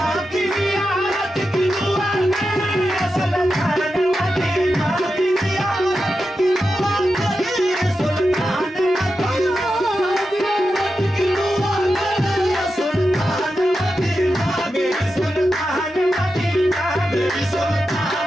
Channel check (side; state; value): both; normal; correlation 0.90